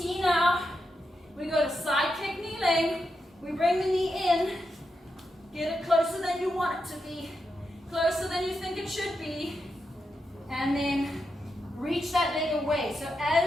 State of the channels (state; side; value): normal; both; correlation 0.86